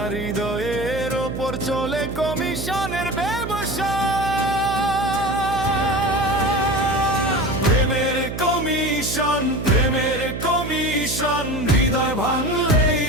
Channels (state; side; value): noise; right; hum, 7 dB below the sound